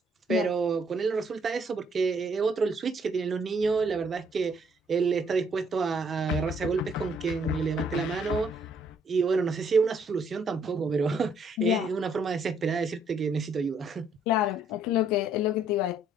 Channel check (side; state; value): both; normal; correlation 0.66